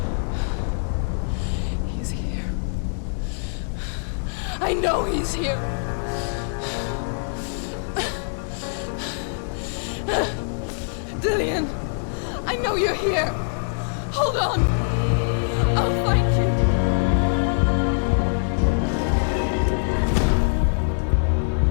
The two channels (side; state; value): right; silent; digital silence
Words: He's here. I know he's here. Dillian, I know you're here. Hold on. I'll find you.